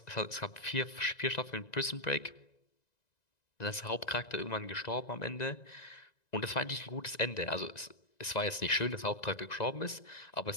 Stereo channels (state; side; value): late; right; 1.9 ms